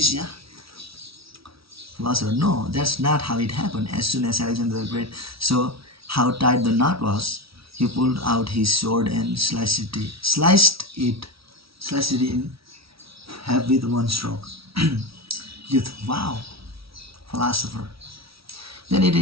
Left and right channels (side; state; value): left; late; 0.76 ms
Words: Philosopher, no, that's not how it happened. As soon as Alexander the Great saw how tight the knot was, he pulled out his sword and sliced it in half with one stroke. Youth, wow, philosopher. Then it